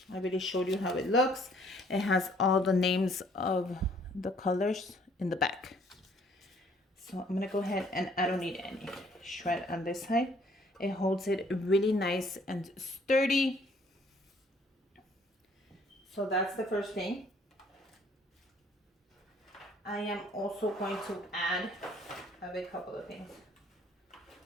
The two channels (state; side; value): normal; both; correlation 0.61